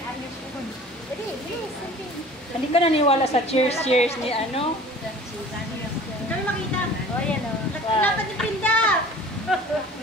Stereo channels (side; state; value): both; normal; correlation 0.44